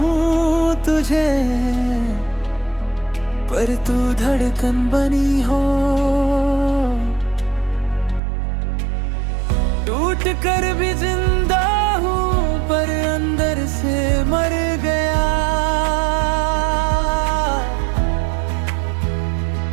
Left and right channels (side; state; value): left; drops out; at 8.2 s